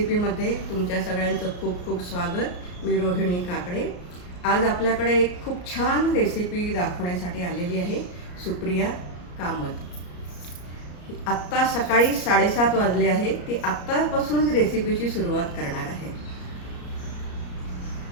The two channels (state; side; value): late; right; 34 ms